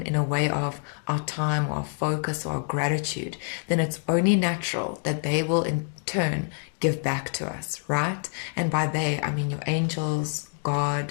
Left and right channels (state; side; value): silent; right; 58 dB below the other